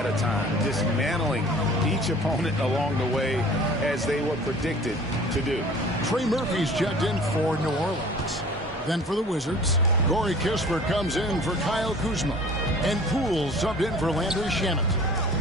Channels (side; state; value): both; normal; correlation 0.47